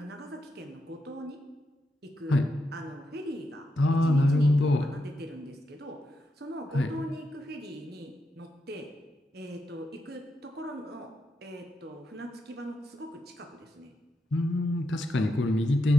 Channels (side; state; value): both; normal; correlation 0.84